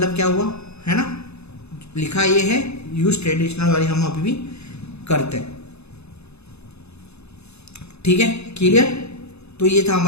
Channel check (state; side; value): late; right; 0.80 ms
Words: क्या हुआ, है ना, लिखा ये है यूज ट्रेडिशनल वाली हम अभी भी करते हैं, ठीक है, क्लियर। तो ये था